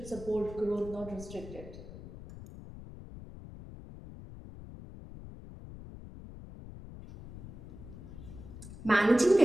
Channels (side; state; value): left; noise; rumble, 13 dB below the sound